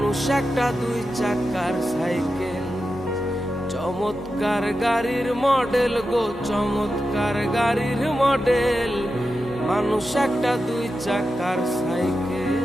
একটা দুই চাকার সাইকেল, চমৎকার গাড়ির মডেল গো, চমৎকার গাড়ির মডেল। মানুষ একটা দুই চাকার সাইকেল।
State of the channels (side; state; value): both; normal; correlation 0.90